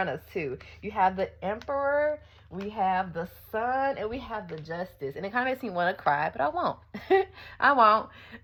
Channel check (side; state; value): both; identical; correlation 1.00